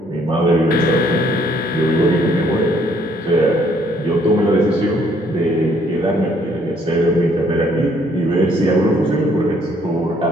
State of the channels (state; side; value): normal; both; correlation 0.65